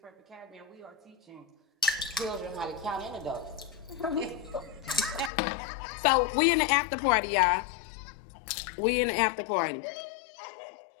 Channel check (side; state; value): right; drops out; at 5.3 s